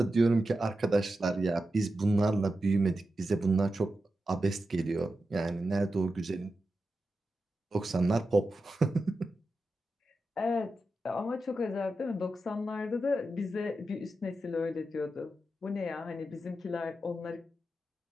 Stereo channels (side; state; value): both; normal; correlation 0.90